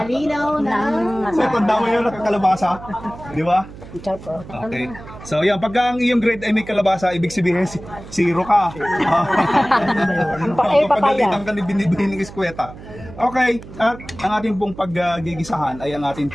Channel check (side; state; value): right; noise; hum, 16 dB below the sound